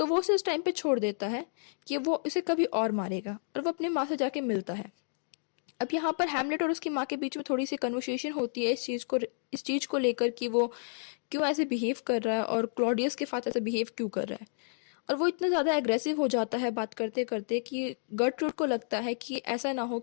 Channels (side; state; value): right; silent; digital silence